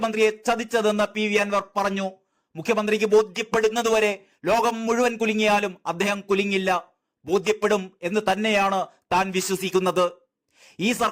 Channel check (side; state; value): both; identical; correlation 1.00